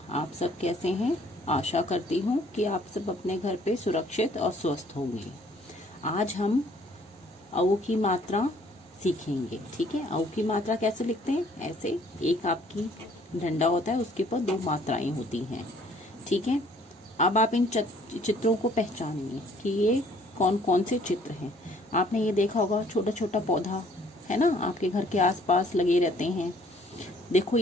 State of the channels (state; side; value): normal; both; correlation 0.60